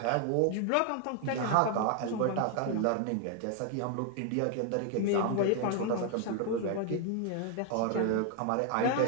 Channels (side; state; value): both; different; correlation 0.00